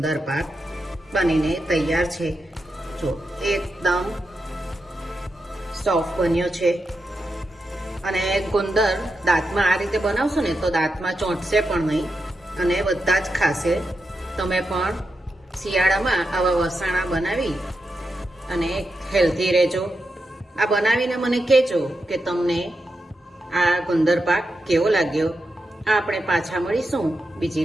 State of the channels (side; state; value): both; normal; correlation 0.87